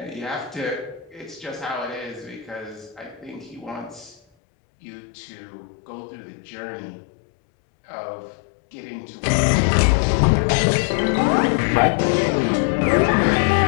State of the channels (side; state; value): right; drops out; at 4.2 s